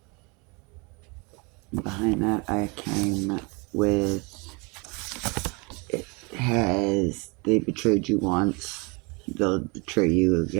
Behind that, I came with it has they betrayed you once, they'll betray you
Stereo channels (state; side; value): quieter; left; 29.6 dB